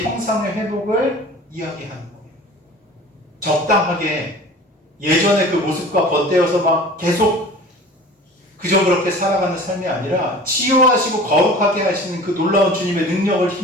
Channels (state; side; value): normal; both; correlation 0.41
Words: 형상의 회복을 이야기하는 거예요. 적당하게 예전의 그 모습과 덧대어서 막 계속 그저 그렇게 살아가는 삶이 아니라 치유하시고 거룩하게 하시는 그 놀라운 주님의 능력을